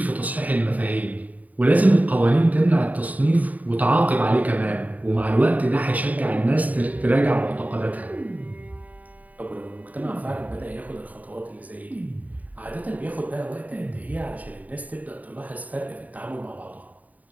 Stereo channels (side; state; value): left; late; 0.074 ms